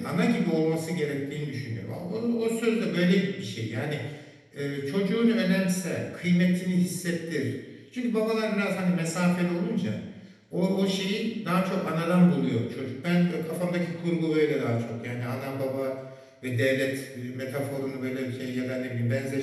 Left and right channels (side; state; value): both; identical; correlation 1.00